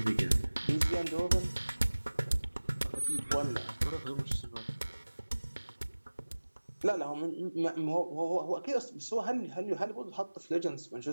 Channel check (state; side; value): inverted; both; correlation -1.00